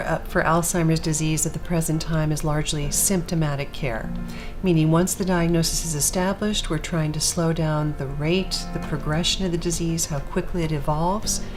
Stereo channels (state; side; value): identical; both; correlation 1.00